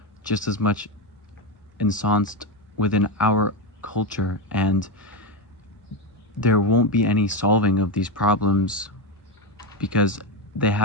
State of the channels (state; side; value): normal; both; correlation 0.12